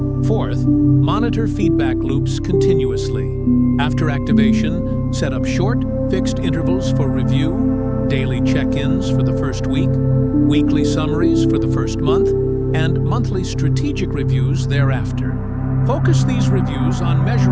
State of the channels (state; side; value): identical; both; correlation 1.00